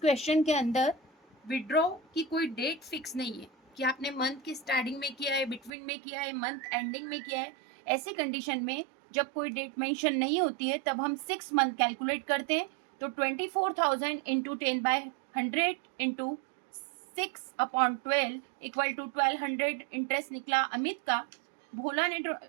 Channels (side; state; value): left; drops out; at 5.7 s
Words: के अंदर विड्रॉ की कोई डेट फिक्स नहीं है कि आपने मंथ की स्टार्टिंग में किया है, बिटवीन में किया है, मंथ एंडिंग में किया है. ऐसी कंडीशन में जब कोई डेट मेंशन नहीं होती है तब हम 6 मंथ कैलकुलेट करते हैं. तो 24,000 into 10/100 into 6/12 equal to 1200 interest निकला अमित का. भोला ने